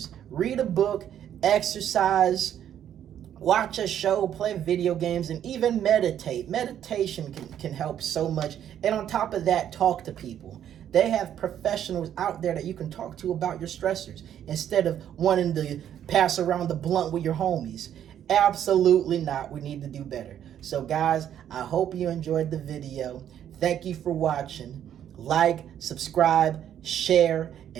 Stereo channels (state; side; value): quieter; left; 10.2 dB